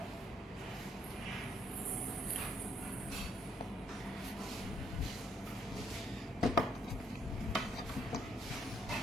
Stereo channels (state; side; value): normal; both; correlation 0.71